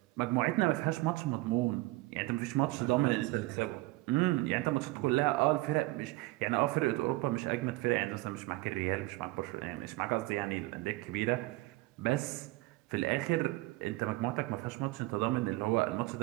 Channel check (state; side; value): quieter; left; 20.7 dB